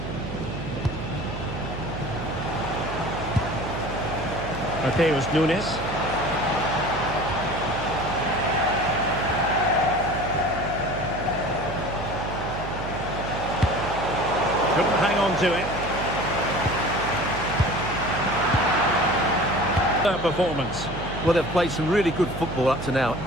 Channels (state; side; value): noise; right; hum, 7 dB below the sound